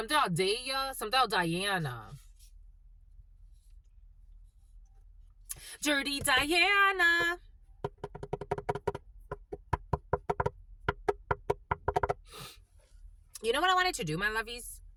about Daya, something about Diana. Dirty Diana. You know what I wanted to do, my lovies?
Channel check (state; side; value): identical; both; correlation 1.00